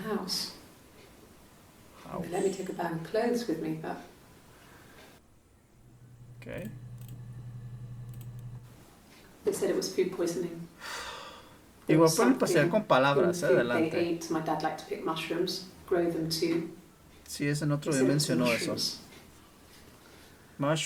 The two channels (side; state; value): both; identical; correlation 1.00